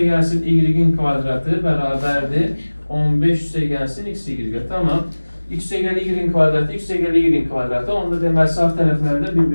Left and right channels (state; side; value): inverted; both; correlation -1.00